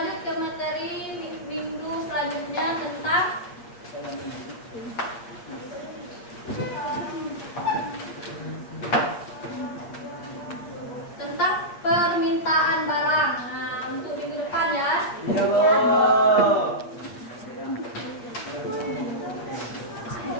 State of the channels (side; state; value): right; late; 8.4 ms